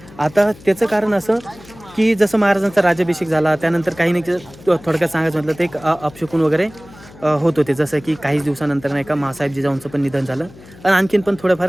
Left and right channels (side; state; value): left; noise; hum, 21 dB below the sound